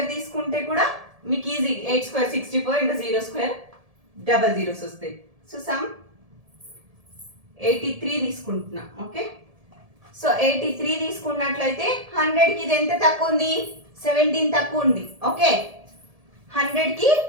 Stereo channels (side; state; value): left; late; 1.7 ms